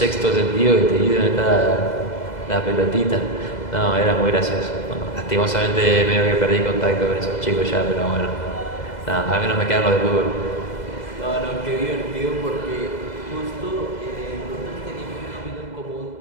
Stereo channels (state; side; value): late; right; 2.0 ms